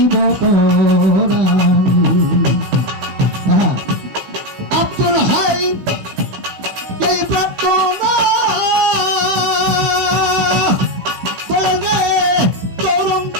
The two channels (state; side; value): late; left; 16 ms